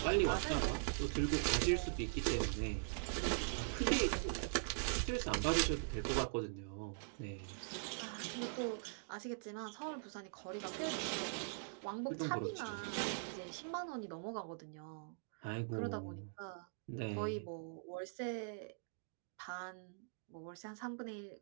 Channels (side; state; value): left; silent; digital silence